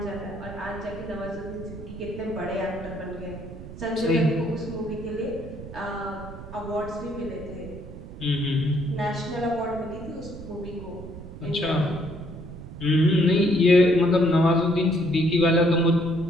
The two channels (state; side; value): noise; right; rumble, 13 dB below the sound